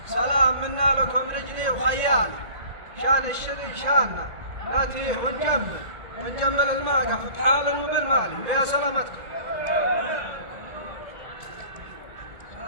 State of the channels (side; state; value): left; late; 1.8 ms